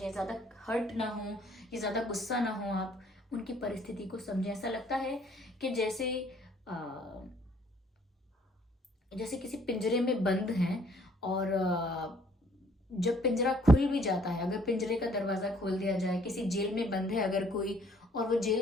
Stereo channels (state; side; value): normal; both; correlation 0.61